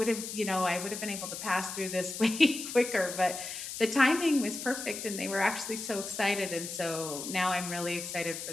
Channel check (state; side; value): noise; left; hiss, 7 dB below the sound